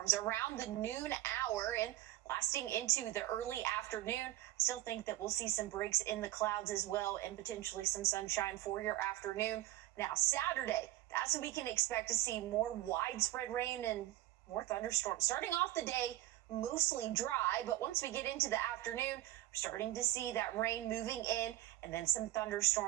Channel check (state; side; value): quieter; left; 15.1 dB